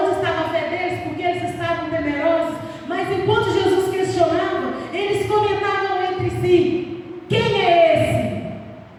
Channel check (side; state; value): both; identical; correlation 1.00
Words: estava a fé deles? Porque eles estavam temerosos. Mas enquanto Jesus questionava, eles comentavam entre si: quem é esse?